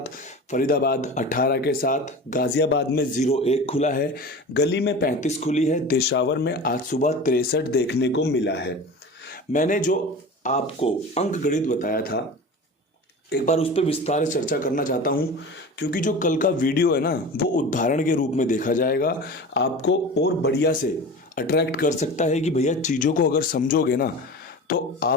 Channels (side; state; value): both; normal; correlation 0.34